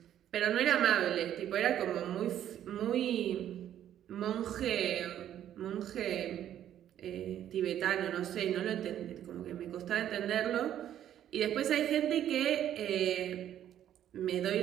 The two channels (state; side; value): quieter; left; 11.0 dB